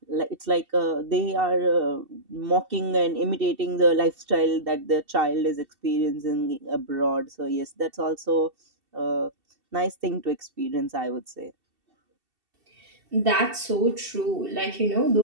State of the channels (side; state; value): left; late; 2.7 ms